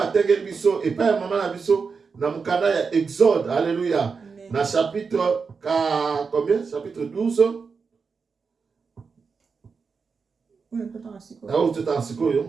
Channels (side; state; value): left; quieter; 5.2 dB